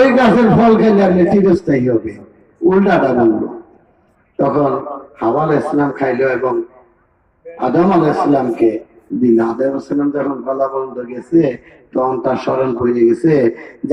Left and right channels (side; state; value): both; identical; correlation 1.00